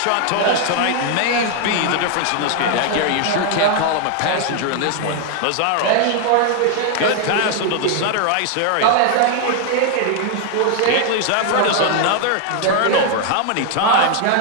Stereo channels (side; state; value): both; different; correlation 0.00